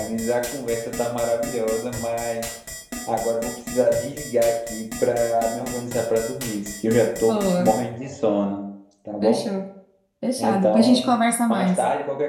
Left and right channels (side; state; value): both; identical; correlation 1.00